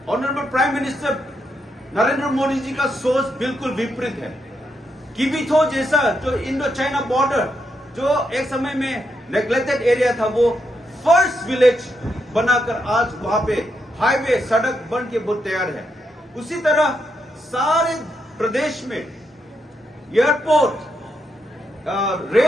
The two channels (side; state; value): both; normal; correlation 0.81